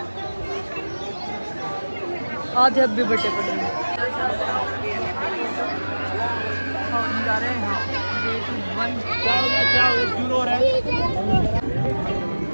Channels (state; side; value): inverted; both; correlation -1.00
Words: आधे अब भी बटे पड़े हैं। हम जा रहे हैं क्या हो गया शुरू हो रहा है।